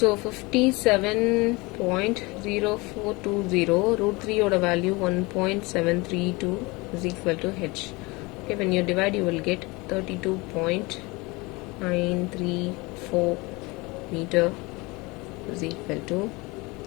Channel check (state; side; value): quieter; right; 24.7 dB